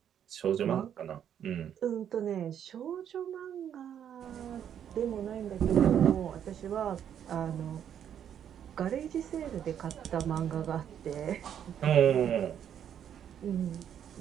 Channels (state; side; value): quieter; left; 9.3 dB